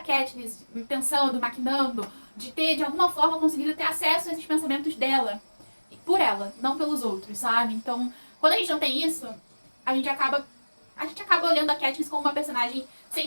pensando, maquinando, de ter, de alguma forma, conseguido ter acesso a esses pensamentos dela. Por ela, não pelos outros, sabe? Então, quando a gente não tem isso, a gente acaba olhando a Katniss como uma personagem sem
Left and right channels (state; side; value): inverted; both; correlation -1.00